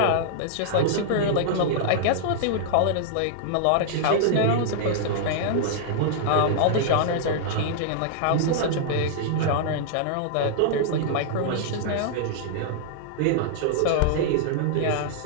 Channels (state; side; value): different; both; correlation -0.01